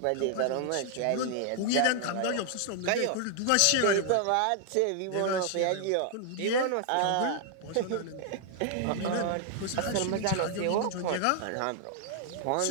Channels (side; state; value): both; different; correlation 0.00